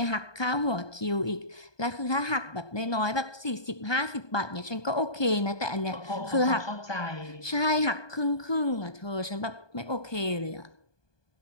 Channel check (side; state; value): right; late; 1.2 ms